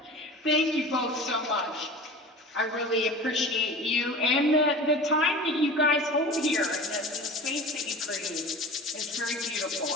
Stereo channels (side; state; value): both; normal; correlation 0.36